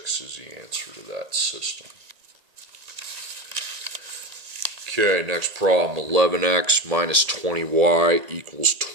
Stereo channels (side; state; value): left; late; 1.8 ms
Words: is the answer to that system. Okay, next problem, 11x minus 20y equals